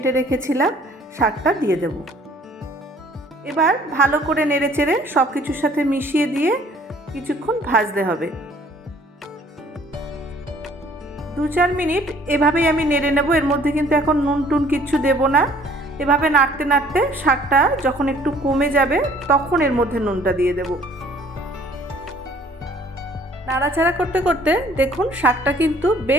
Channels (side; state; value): both; normal; correlation 0.56